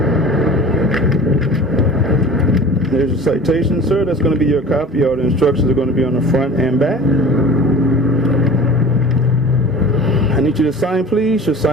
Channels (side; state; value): both; normal; correlation 0.40